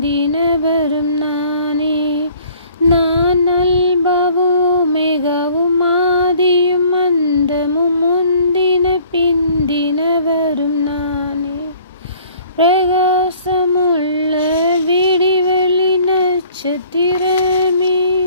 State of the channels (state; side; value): inverted; both; correlation -0.55